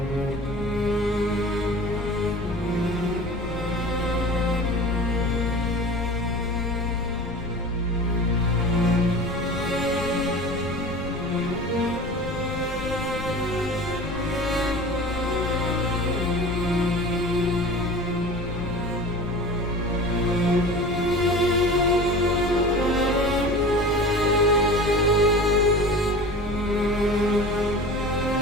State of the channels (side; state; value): left; noise; rumble, 13 dB below the sound